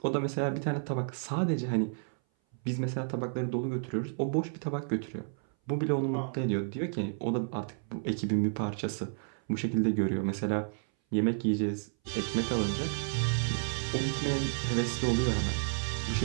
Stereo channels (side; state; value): left; silent; 57 dB below the other